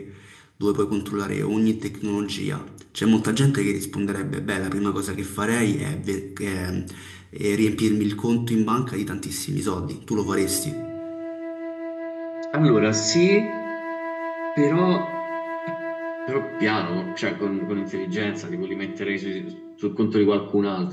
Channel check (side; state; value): both; identical; correlation 1.00